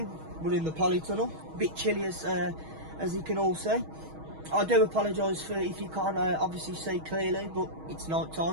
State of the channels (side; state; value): left; late; 6.3 ms